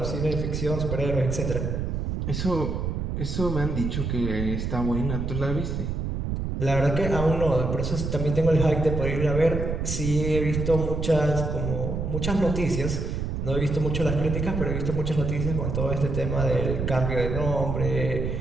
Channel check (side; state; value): right; noise; rumble, 2 dB below the sound